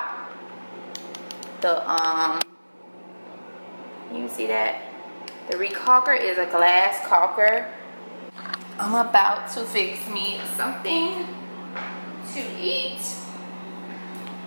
you see that the recalker is a glass caulker. I'm about to fix me something to eat.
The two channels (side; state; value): both; inverted; correlation -1.00